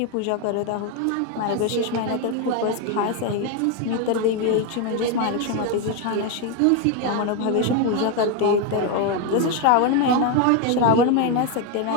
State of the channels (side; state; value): both; different; correlation 0.02